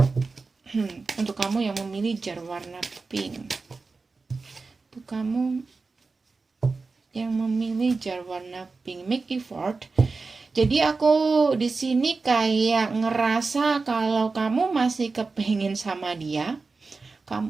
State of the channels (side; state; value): left; quieter; 4.1 dB